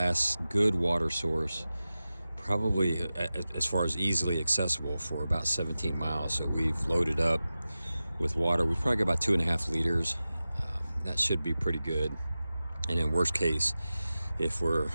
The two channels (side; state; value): both; inverted; correlation -0.95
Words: good water source, probably as far as easily accessible, for about 17 miles. So we've loaded up with water. We've probably got about 2.5 liters. That should be pretty good. And in worst case, if we're